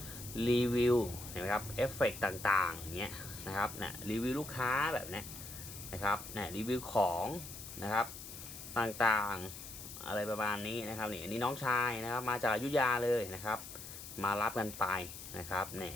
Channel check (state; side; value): noise; left; hiss, 11 dB below the sound